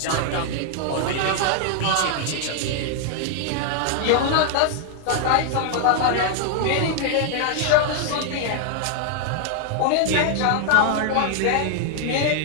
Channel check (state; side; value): different; both; correlation 0.00